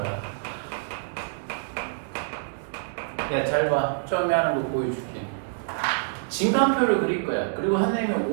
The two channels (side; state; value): left; silent; digital silence